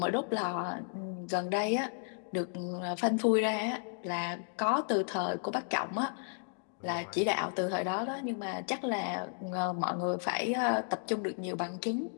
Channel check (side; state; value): right; silent; 55 dB below the other